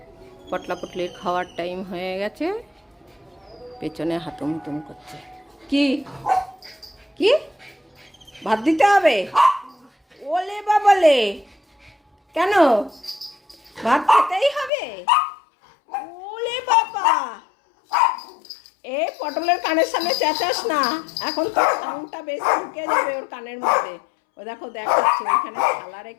পটলা পটলির খাওয়ার টাইম হয়ে গেছে, পেছনে হাতুম হুতুম করছে। কি কি ভাত দিতে হবে? ওলে বাবালে, কেন ভাত খেতেই হবে? ওলে বাবা, এ পটলের কানের সামনে চেঁচাস না, এখন তো সাউন্ডটা বেশি ঢুকে যাবে ওর কানের মধ্যে। ও দেখো দেখাচ্ছে, ওইখানে থালা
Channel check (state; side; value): drops out; right; at 14.7 s